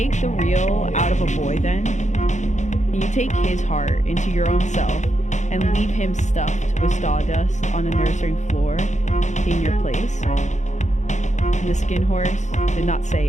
the real out of a boy then? Can you take his heart into your own self and leave him stuffed with sawdust on a nursery floor in your place? And the skin horse did not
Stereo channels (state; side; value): late; right; 0.35 ms